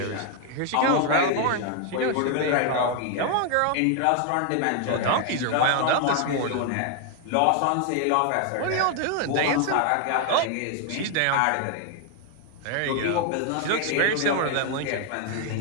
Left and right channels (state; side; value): different; both; correlation 0.00